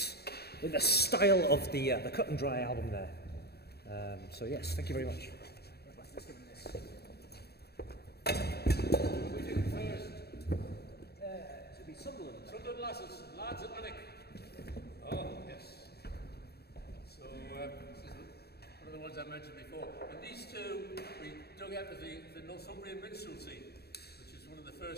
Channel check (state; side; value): late; right; 0.47 ms